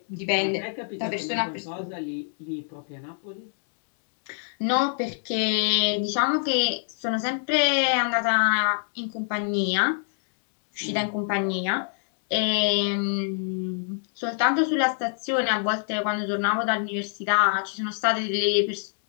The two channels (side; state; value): right; silent; 61 dB below the other